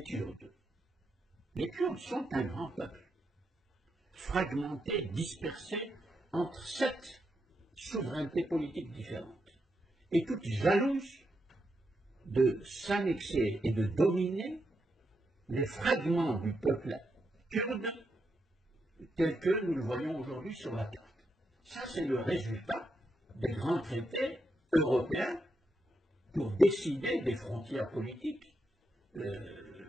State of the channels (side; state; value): both; normal; correlation 0.83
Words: Kurdes. Les Kurdes sont un grand peuple, fragmenté, dispersé entre 7 souverainetés politiques différentes, et toutes jalouses de s'annexer et de dominer les fragments du peuple kurde tels que nous le voyons aujourd'hui sur la carte. Ça, c'est le résultat des grands traités européens pour décider des frontières politiques